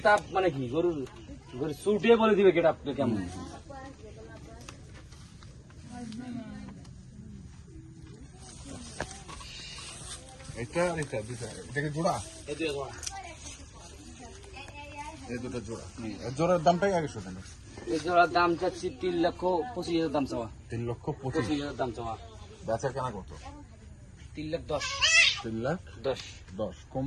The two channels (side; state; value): both; identical; correlation 1.00